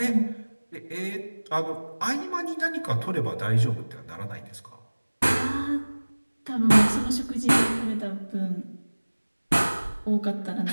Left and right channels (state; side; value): inverted; both; correlation -1.00